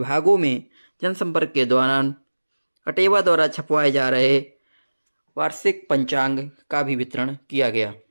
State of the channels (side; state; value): both; inverted; correlation -1.00